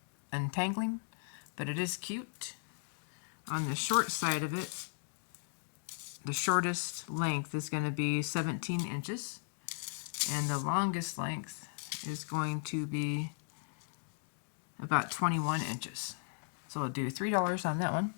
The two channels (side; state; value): right; silent; digital silence